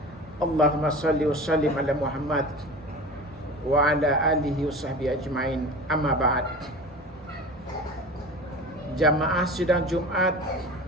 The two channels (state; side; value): normal; both; correlation 0.35